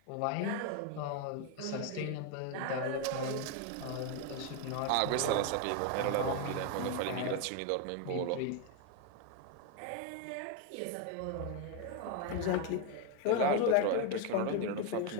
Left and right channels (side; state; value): both; different; correlation 0.01